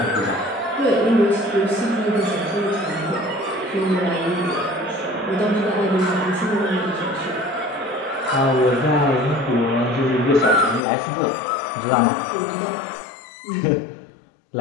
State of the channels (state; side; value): drops out; right; at 10.8 s